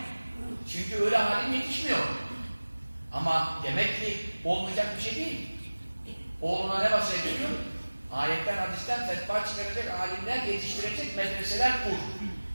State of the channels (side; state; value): both; inverted; correlation -1.00